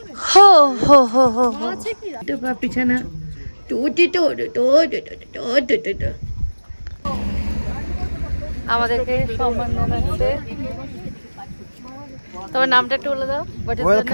হো হো হো হো হো পিছানা। আমাদেরকে সম্মান জানাচ্ছে। তোমার নামটা একটু বলে দাও।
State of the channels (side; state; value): both; inverted; correlation -1.00